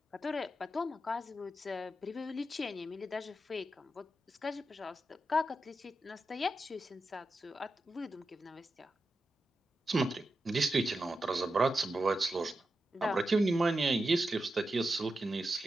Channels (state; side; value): normal; both; correlation 0.89